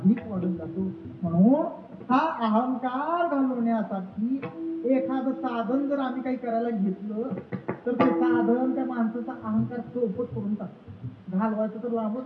वाढून जातो. म्हणून हा अहंकार घालवण्यासाठी एखादं साधन जर आम्ही काही करायला घेतलं तर ते साधन त्या माणसाचा अहंकार चौपट करून टाकतो. घालवायचं तर लांबच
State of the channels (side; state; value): both; identical; correlation 1.00